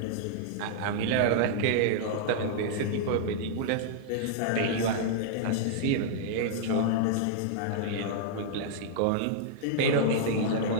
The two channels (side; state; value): both; different; correlation -0.01